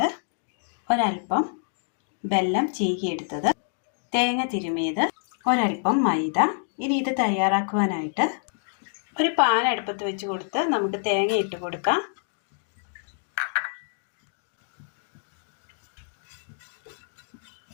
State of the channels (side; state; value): right; silent; digital silence